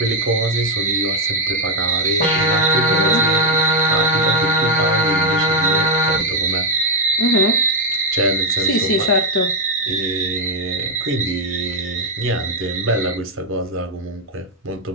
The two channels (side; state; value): both; normal; correlation 0.03